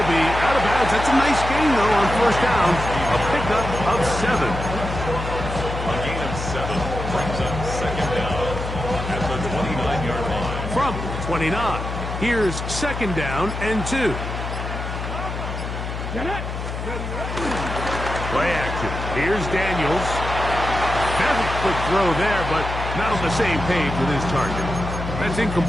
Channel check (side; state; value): left; noise; hum, 6 dB below the sound